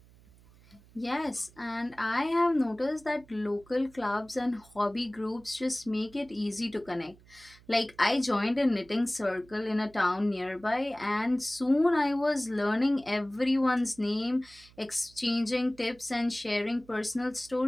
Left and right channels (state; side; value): noise; right; hum, 26 dB below the sound